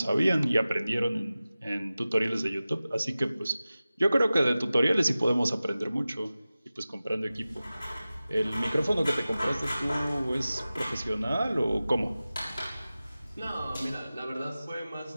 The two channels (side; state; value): both; inverted; correlation -0.96